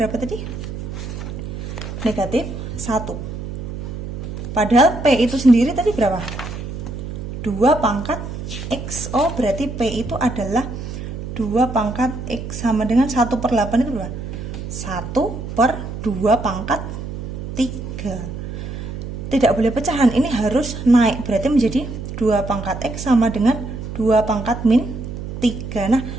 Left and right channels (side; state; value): right; noise; hum, 7 dB below the sound